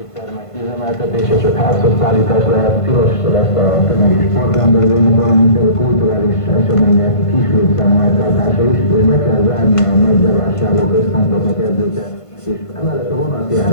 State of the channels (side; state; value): right; late; 1.5 ms